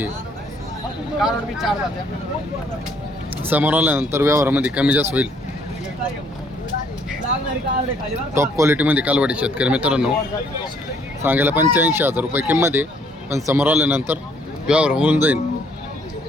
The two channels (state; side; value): normal; both; correlation 0.64